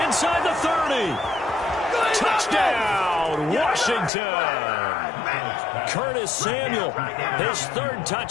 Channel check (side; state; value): right; drops out; at 4.1 s